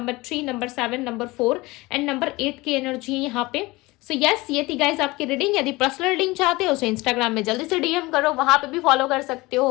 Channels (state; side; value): quieter; right; 21.6 dB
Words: 3, number 7, number 4 and number 8 की एनर्जी है यहाँ पे। सो यस, ये थी गाइस आपकी रीडिंग। यदि पर्सनल रीडिंग चाहते हो तो इंस्टाग्राम में जल्दी से डीएम करो, वहां पे भी फॉलो कर सकते